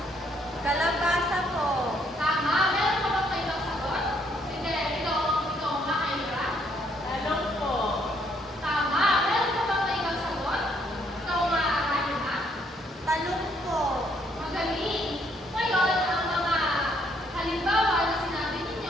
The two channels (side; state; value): both; normal; correlation 0.69